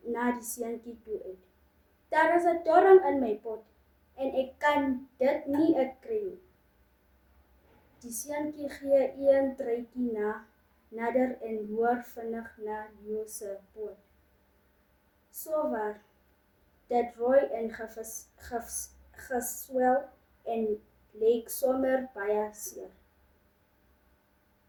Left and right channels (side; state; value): both; identical; correlation 1.00